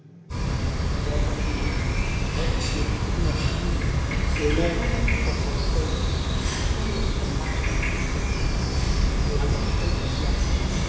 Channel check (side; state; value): both; identical; correlation 1.00